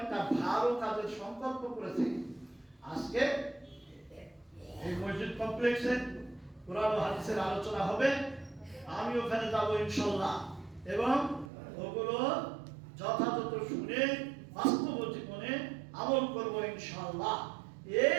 ভালো কাজের সংকল্প করেছে। আজকে এই মসজিদ কমপ্লেক্সে কোরআন ও হাদিসের আলোচনা হবে, আমি ওখানে যাবো ইনশাআল্লাহ, এবং ওগুলো যথাযথ শুনে বাস্তব জীবনে আমল করব ইনশাআল্লাহ।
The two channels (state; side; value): drops out; left; at 11.5 s